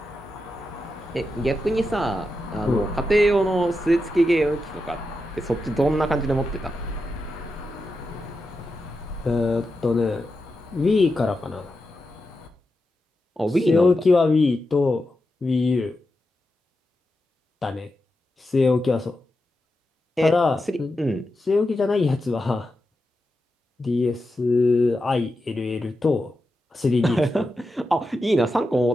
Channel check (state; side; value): normal; both; correlation 0.89